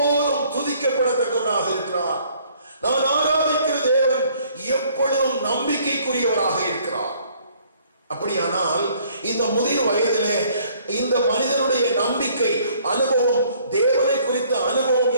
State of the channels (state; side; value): inverted; both; correlation -0.60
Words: துதிக்கப்படத்தக்கவராக இருக்கிறார். நான் ஆராதிக்கிற தேவன் எப்பொழுதும் நம்பிக்கைக்குரியவராக இருக்கிறார். அப்படியானால் இந்த முதிர் வயதிலே இந்த மனிதனுடைய நம்பிக்கை அனுபவம், தேவனை குறித்த அனுபவம்